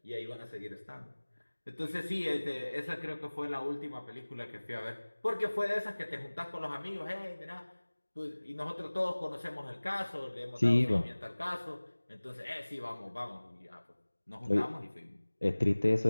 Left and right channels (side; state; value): both; inverted; correlation -1.00